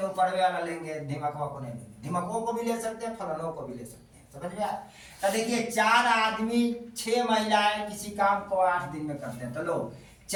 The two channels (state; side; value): identical; both; correlation 1.00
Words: पड़वे वाला लेंगे, धिमकवा को नहीं लेंगे। धिमकवों को भी ले सकते हैं, फलानों को भी ले सकते हैं। समझ में आया? तो देखिए 4 आदमी 6 महिलाएं किसी काम को 8 दिन में करते हैं। तो लो